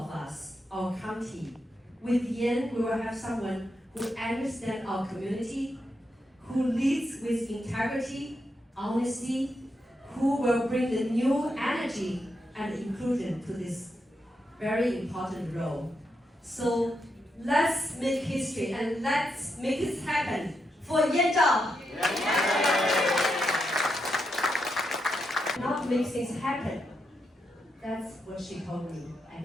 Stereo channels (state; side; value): normal; both; correlation 0.83